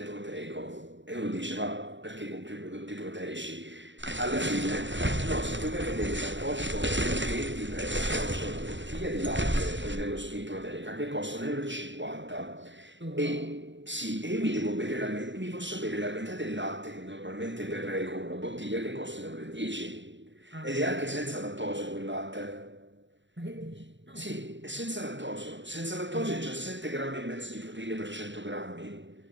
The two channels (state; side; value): late; left; 0.54 ms